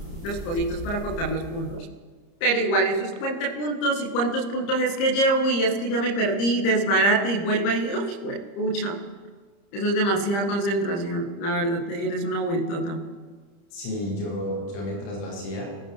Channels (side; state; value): right; late; 30 ms